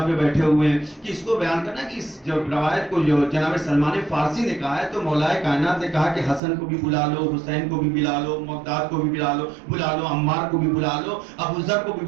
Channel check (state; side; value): drops out; left; at 6.4 s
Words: پہ بیٹھے ہوئے ہیں کہ اس کو بیان کرنا کہ اس جو روایت کو جو جناب سلمان فارسی نے کہا ہے تو مولا کائنات نے کہا کہ حسن کو بھی بلا لو، حسین کو بھی بلا لو، مقداد کو بھی بلا لو، عمار کو بھی بلا لو، ابو ذر کو بھی